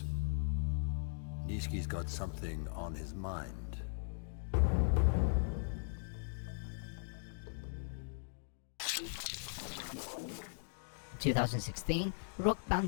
Nishiki's got something on his mind. 2016, rock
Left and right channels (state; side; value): silent; right; digital silence